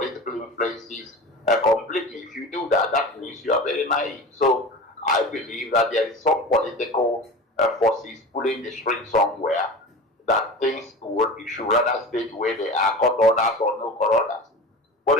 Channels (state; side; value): normal; both; correlation 0.33